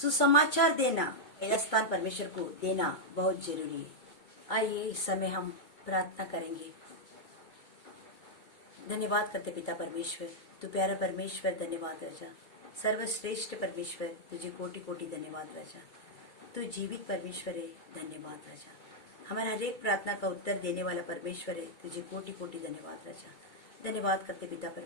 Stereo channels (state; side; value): late; right; 2.2 ms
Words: देना, पहला स्थान परमेश्वर को देना बहुत जरूरी है। आइए इस समय हम प्रार्थना करेंगे। धन्यवाद करते पिता परमेश्वर, तू प्यारा परमेश्वर, धन्यवाद राजा, सर्वश्रेष्ठ परमेश्वर, तुझे कोटि कोटि धन्यवाद राजा। तू जीवित परमेश्वर है, धन्यवाद राजा। हमारा हर एक प्रार्थना का उत्तर देने वाला परमेश्वर है, तुझे कोटि कोटि धन्यवाद राजा। धन्यवाद करते पिता